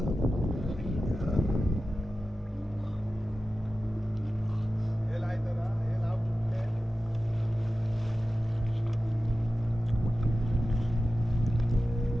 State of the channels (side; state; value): both; normal; correlation 0.94